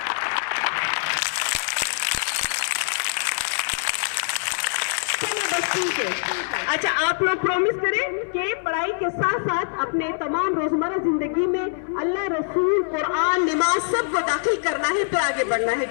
اچھا, آپ لوگ پرومس کریں کہ پڑھائی کے ساتھ ساتھ اپنے تمام روزمرہ زندگی میں اللہ, رسول, قرآن, نماز سب کو داخل کرنا ہے, پھر آگے بڑھنا ہے.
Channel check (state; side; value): silent; right; 63 dB below the other